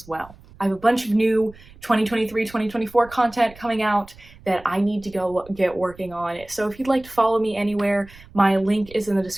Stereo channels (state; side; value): noise; right; rumble, 22 dB below the sound